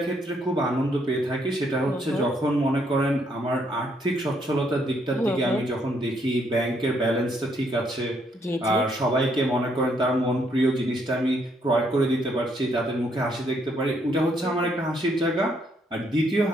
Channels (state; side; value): normal; both; correlation 0.72